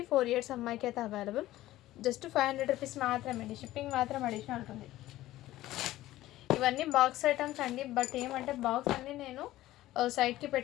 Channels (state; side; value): quieter; right; 15.5 dB